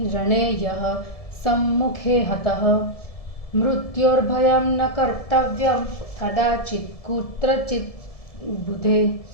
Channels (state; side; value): late; right; 1.7 ms